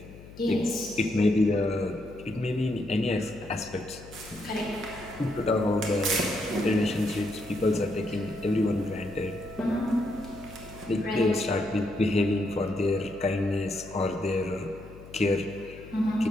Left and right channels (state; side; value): noise; left; hum, 17 dB below the sound